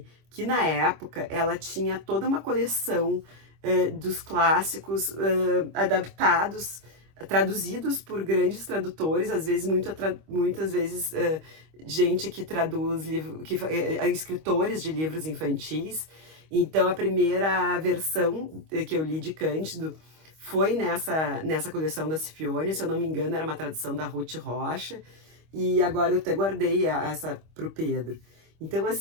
que na época ela tinha toda uma coleção dos clássicos adaptados, traduzidos por grandes tradutores, às vezes muitas vezes gente que traduz escritores de livros infantis. Então a primeira versão que eu li de Cândido foi nessa coleção da Scipione, se eu não me engano era uma tradução da Ruth Rocha, e agora eu até guardei essa para o Pedro. Então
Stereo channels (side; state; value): left; late; 25 ms